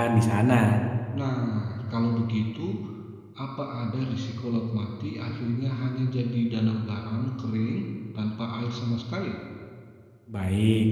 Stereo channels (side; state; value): both; identical; correlation 1.00